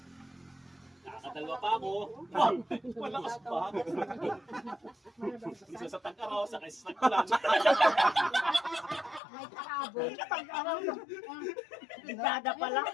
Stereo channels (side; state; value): right; drops out; at 9.2 s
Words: Nakakadalwa pa ako. Malakas pa. Isa sa tag-araw, sa kaisa sa kulan. May kahabol. Ligada pala.